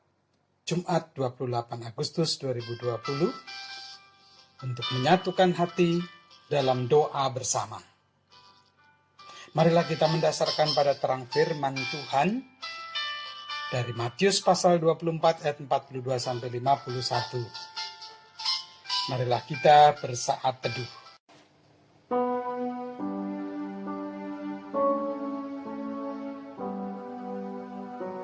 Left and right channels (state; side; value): identical; both; correlation 1.00